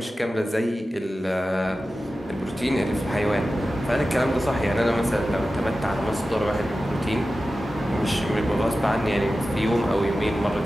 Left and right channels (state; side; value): normal; both; correlation 0.94